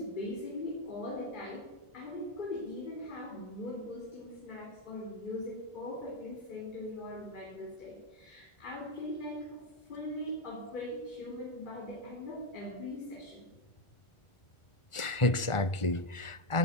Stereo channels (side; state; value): right; late; 1.4 ms